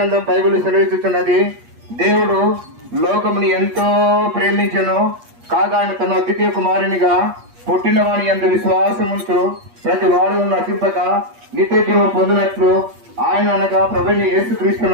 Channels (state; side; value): late; left; 8.4 ms